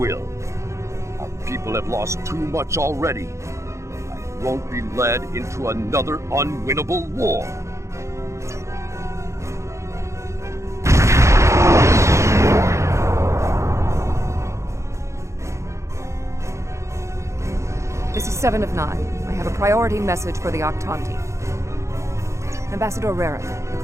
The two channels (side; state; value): left; late; 0.14 ms